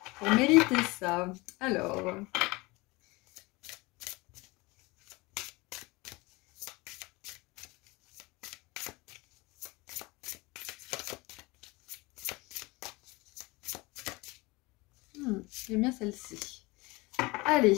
pour mériter ça? Alors... j'aime bien celle-ci. Allez,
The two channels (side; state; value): right; quieter; 24.0 dB